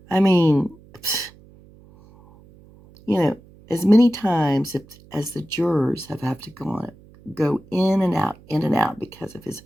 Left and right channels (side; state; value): right; noise; hum, 25 dB below the sound